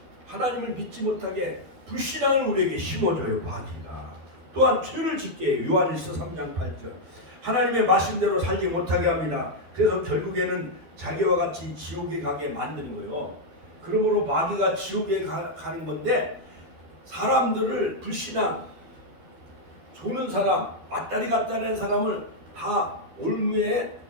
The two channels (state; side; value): late; left; 12 ms